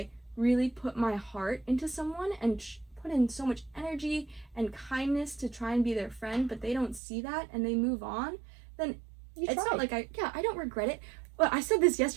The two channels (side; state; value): left; drops out; at 7.0 s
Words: really put my heart into someone and put in so much energy and kindness to try and be their friend, but they don't see that and they move on, then it's not like I don't regret it. Well, I said this